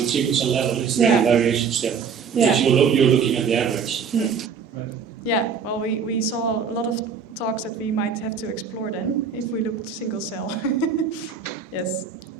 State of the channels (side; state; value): left; quieter; 6.2 dB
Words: single cell level? Is there any variation still? Yeah. Because you're looking at the average. Right. Yeah. Well, we saw a lot of talks that we might have to explore then if we looked single cell. Yes.